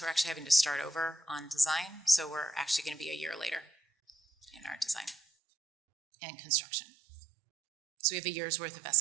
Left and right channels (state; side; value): drops out; left; at 5.2 s